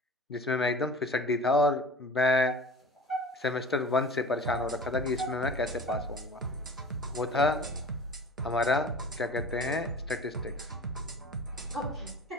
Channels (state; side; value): normal; both; correlation 0.39